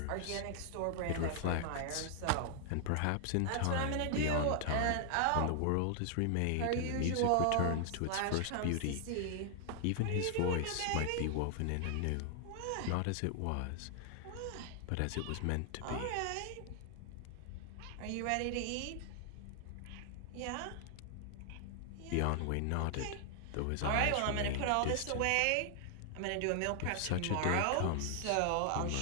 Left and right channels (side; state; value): both; different; correlation 0.00